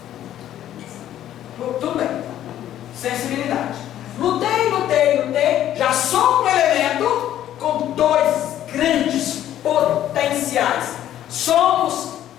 Tudo bem. Sensibilidade. Lutei. Já sou um elemento com dois grandes potenciais. Somos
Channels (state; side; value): quieter; right; 11.9 dB